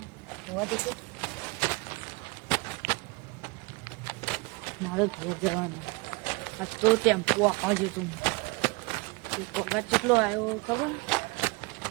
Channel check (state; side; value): quieter; left; 27.0 dB